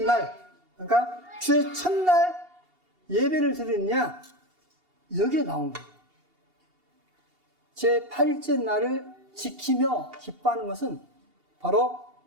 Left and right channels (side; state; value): left; late; 2.8 ms